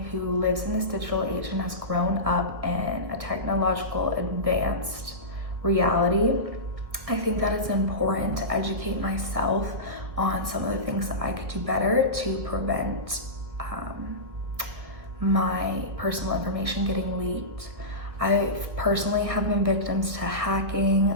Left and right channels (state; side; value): late; left; 1.7 ms